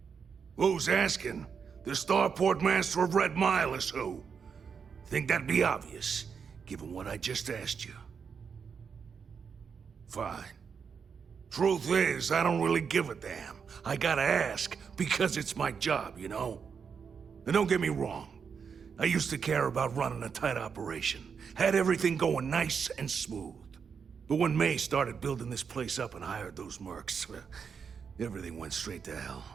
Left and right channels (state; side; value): quieter; left; 6.3 dB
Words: Who's asking? The starport master of Red Mile is who? Think that'd be obvious, given what I just asked you. Fine. Truth is, I don't really give a damn. I gotta ask, because it's my job, you know? And don't get me wrong. I used to care about running a tight operation. Had everything going nice and smooth. But when May started building this place up and hired those mercs, everything went straight to hell.